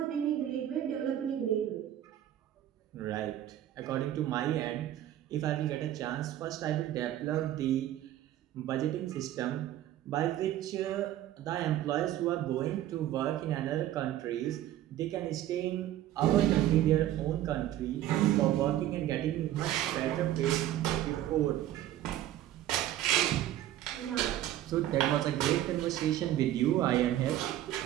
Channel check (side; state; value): left; quieter; 12.9 dB